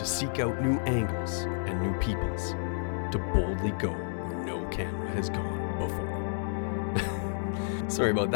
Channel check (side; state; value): right; silent; digital silence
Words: seek out new angles and new peoples, to boldly go where no camera has gone before. Sorry about